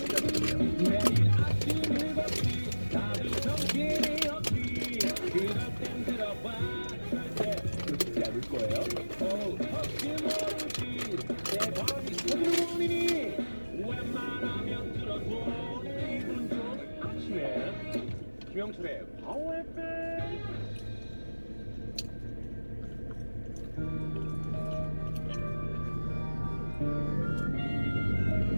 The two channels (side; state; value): both; inverted; correlation -1.00